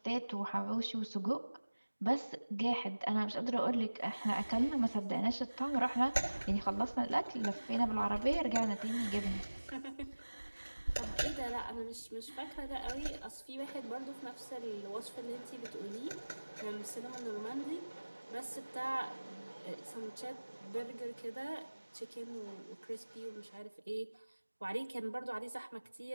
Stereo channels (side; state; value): both; inverted; correlation -1.00